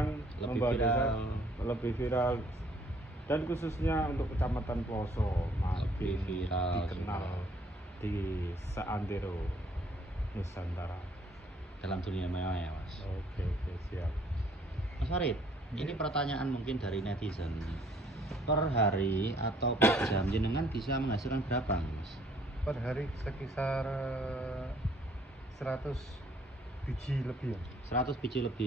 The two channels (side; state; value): both; normal; correlation 0.62